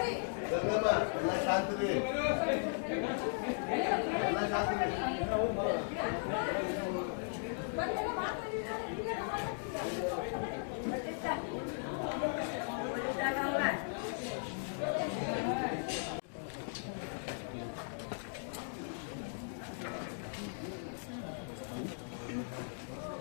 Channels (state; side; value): silent; right; digital silence